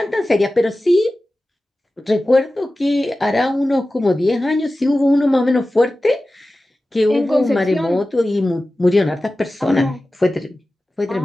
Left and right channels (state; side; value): normal; both; correlation 0.95